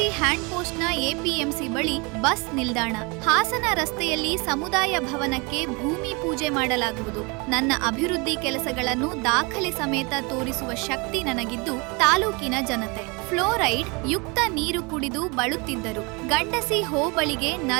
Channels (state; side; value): quieter; left; 29.1 dB